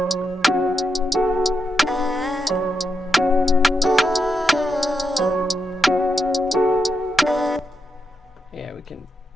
Yeah, we can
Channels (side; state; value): both; normal; correlation 0.85